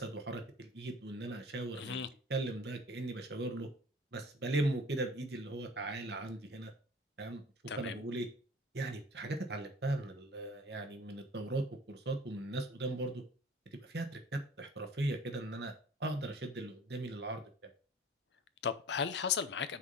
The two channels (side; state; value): both; normal; correlation 0.46